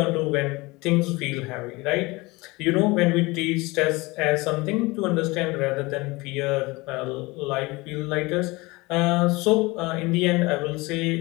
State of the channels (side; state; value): right; quieter; 23.2 dB